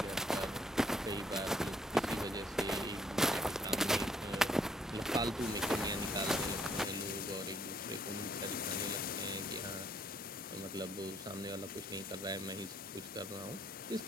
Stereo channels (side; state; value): both; normal; correlation 0.65